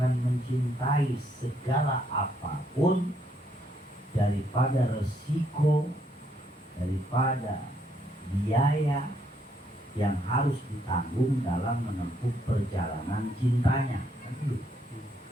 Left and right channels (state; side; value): normal; both; correlation 0.72